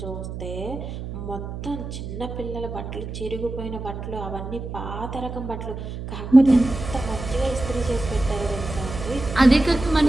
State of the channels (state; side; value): noise; right; hum, 8 dB below the sound